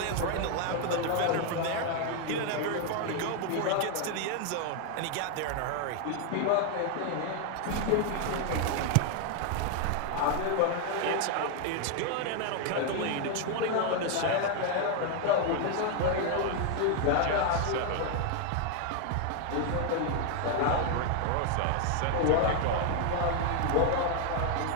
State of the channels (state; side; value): different; both; correlation 0.01